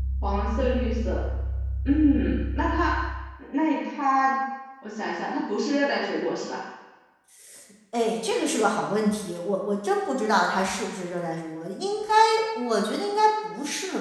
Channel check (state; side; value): identical; both; correlation 1.00